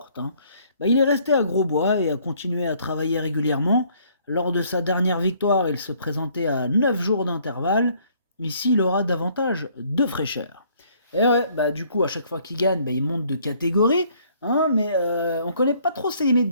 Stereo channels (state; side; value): inverted; both; correlation -0.63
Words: Il est resté à Grosbois et a continué à travailler régulièrement. Lors de sa dernière victoire, il se présentait à 9 jours d'intervalle. Ici, il aura davantage de fraîcheur. Et ouais, du coup, à chaque fois qu'il gagne, il monte de catégorie, mais on connaît pas trop ses limites,